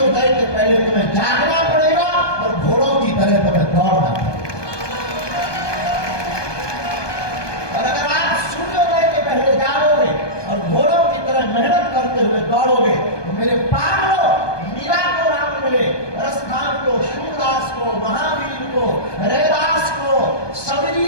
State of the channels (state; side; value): late; right; 1.2 ms